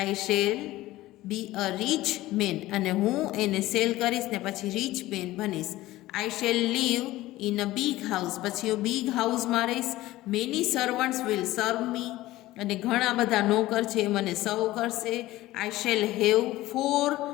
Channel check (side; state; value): right; quieter; 17.0 dB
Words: shall be a rich man, અને હું એને સેલ કરીશ ને પછી રીચ મેન બનીશ. I shall live in a big house, પછી હું બિગ હાઉસમાં રહીશ. મેની સર્વન્ટ્સ વિલ સર્વ મી, અને ઘણા બધા નોકર છે એ મને સર્વ કરશે. આઈ શેલ હેવ 4